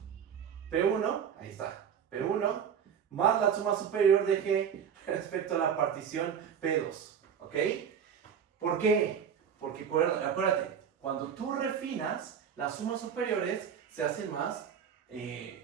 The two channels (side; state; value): left; quieter; 7.8 dB